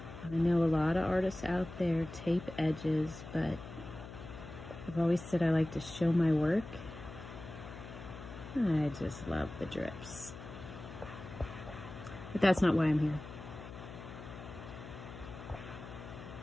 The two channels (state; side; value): noise; left; hum, 13 dB below the sound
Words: I know a lot of artists out there tape edges, but I've always said I like to show my work. I just love the drips. But that's not why I'm here.